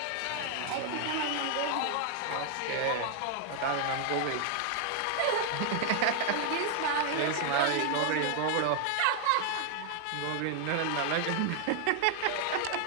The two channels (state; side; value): different; both; correlation 0.00